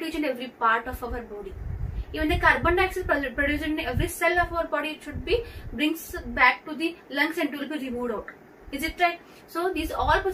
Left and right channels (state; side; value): identical; both; correlation 1.00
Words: each and every part of our body. Even the carbon dioxide produced in every cell of our body, it should be brings back to the lungs and it will be removed out. Is it right? So these all